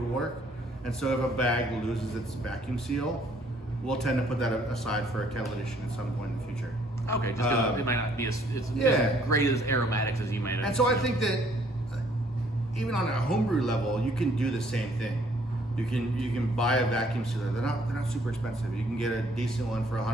work. And so if a bag loses its vacuum seal, we'll tend to put that aside for a kettle edition at some point in the future. Okay, just because it might not be as great as aromatics as you might have. And so I think that even on a homebrew level, you can do the same thing. You can buy a vacuum sealer. They're not super expensive. You can get a decent one for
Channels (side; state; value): both; normal; correlation 0.63